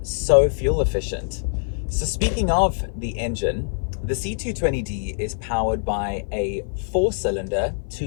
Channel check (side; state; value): right; silent; 55 dB below the other